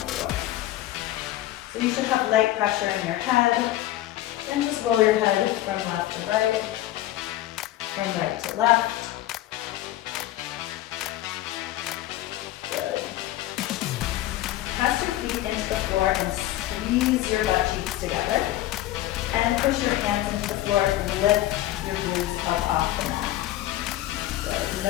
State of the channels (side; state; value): right; quieter; 14.9 dB